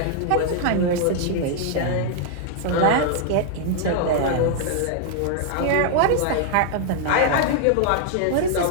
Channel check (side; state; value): both; different; correlation -0.01